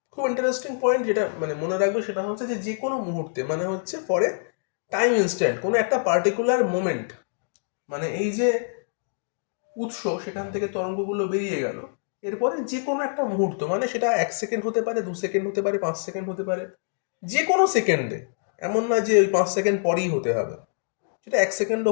খুব ইন্টারেস্টিং পয়েন্ট, যেটা মানে মনে রাখবে সেটা হচ্ছে যে যে কোনো মুহূর্তে মানে হচ্ছে পরে টাইম ইনস্ট্যান্ট, কোনো একটা পার্টিকুলার মোমেন্ট, মানে এই যে উৎস সেখান থেকে তরঙ্গগুলো বেরিয়ে গেল, এরপরে যে কোনো একটা মুহূর্ত, মানে সেটা 1 সেকেন্ড হতে পারে, 2 সেকেন্ড হতে পারে, 5 সেকেন্ড হতে পারে, যে কোনো সেকেন্ডে, এমন না যে ওই 5 সেকেন্ড পরেই হতে হবে, সেটা 1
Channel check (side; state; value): right; silent; digital silence